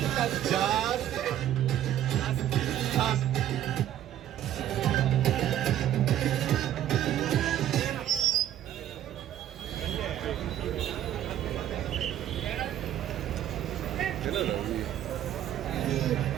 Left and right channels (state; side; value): quieter; left; 11.7 dB